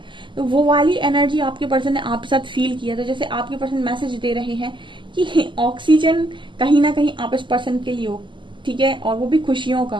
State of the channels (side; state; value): left; late; 0.24 ms